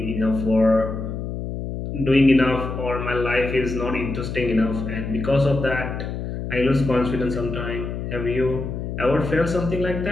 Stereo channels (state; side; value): noise; left; hum, 5 dB below the sound